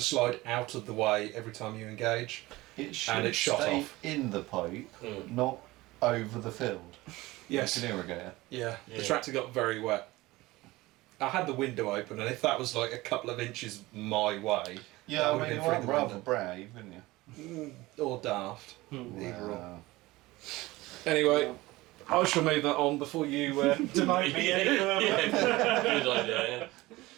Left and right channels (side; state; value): left; quieter; 19.6 dB